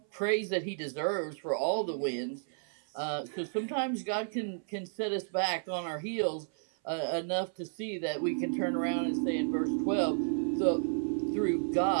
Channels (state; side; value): silent; left; 56 dB below the other